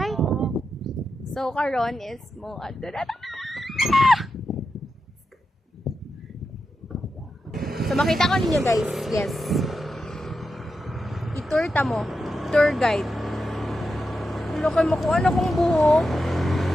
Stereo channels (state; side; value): normal; both; correlation 0.88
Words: So karon is mo So makita ko ninyo guys, yes. I-tour ta mo. Tour guide. Hello kayo makuha na kong buhok.